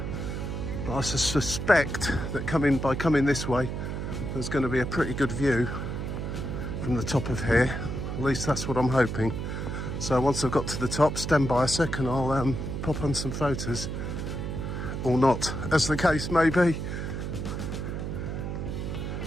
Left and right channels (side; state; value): right; noise; hum, 4 dB below the sound